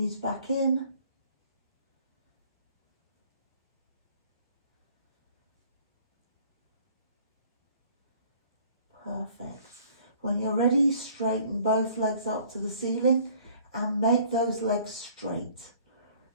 back in. Perfect. When you're ready, straighten both legs up to the ceiling and make those legs straight.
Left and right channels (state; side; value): inverted; both; correlation -0.55